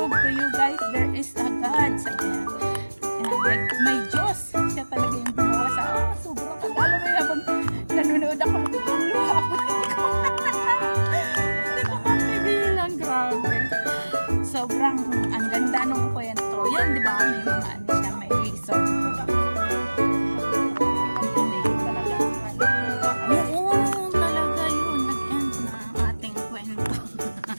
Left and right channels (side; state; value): both; inverted; correlation -1.00